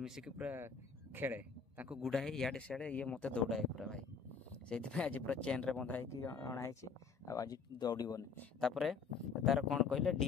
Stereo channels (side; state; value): right; quieter; 5.6 dB